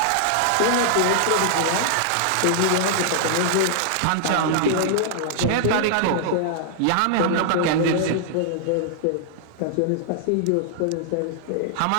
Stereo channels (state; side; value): different; both; correlation -0.01